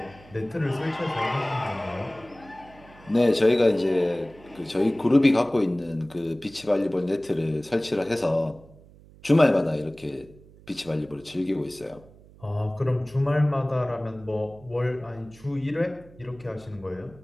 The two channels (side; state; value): right; noise; hum, 23 dB below the sound